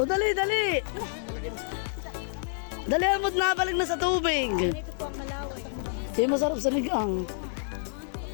dali, dali. Dali, amot na, balik na sa tubig. Ito po ang malaway. Di masarap sa ligang.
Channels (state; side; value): silent; right; digital silence